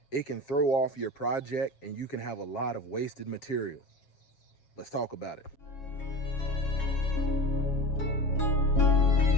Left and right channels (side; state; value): right; late; 7.3 ms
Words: it can throw off your project and you can have a lot of wasted material. Let's talk about it.